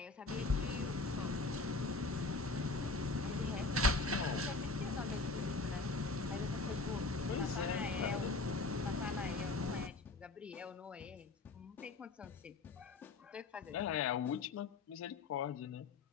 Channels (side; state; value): right; quieter; 3.6 dB